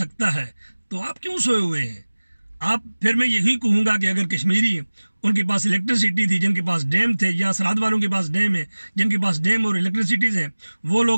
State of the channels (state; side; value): inverted; both; correlation -1.00